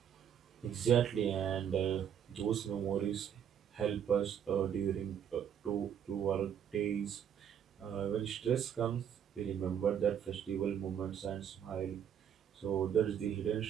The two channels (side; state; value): left; quieter; 8.8 dB